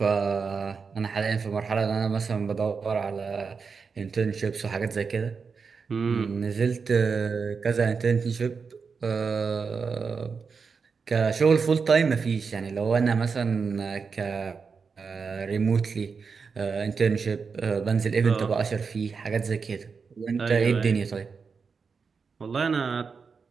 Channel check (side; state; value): left; quieter; 5.3 dB